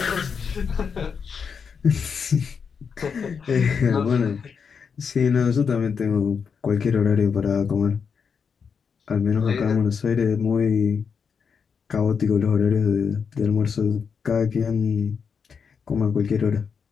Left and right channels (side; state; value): right; quieter; 6.2 dB